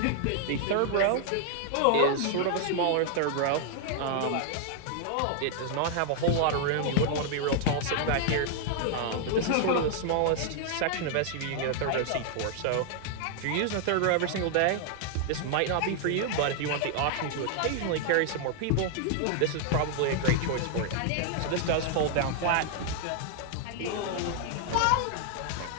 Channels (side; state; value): both; different; correlation 0.00